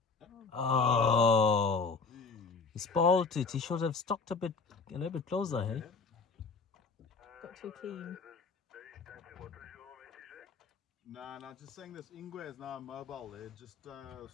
Oh, he spoiled it. He should have stuck a little bit closer, hey? Got too keen. No, just saying this Ingwe is now mobile. They're just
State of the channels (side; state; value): right; quieter; 4.6 dB